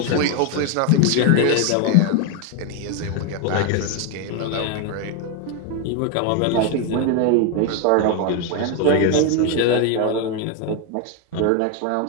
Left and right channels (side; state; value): both; different; correlation 0.01